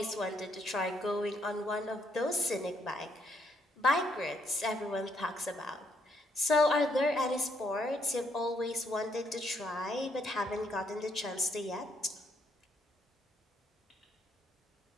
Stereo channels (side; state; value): both; normal; correlation 0.72